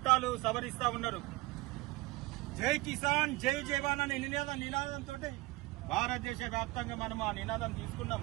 సవరిస్తా ఉన్నారు. జై కిసాన్ జై జవాన్ అనే నినాదంతో భారతదేశ వ్యాప్తంగా మనం ఆ నినాదం తీసుకున్నాం.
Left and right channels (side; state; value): left; quieter; 20.9 dB